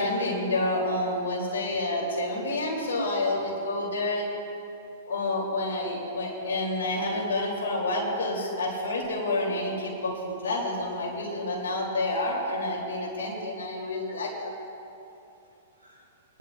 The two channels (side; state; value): both; inverted; correlation -0.43